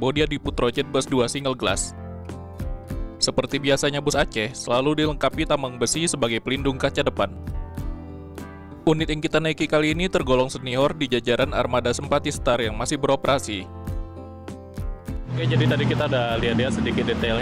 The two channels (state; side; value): identical; both; correlation 1.00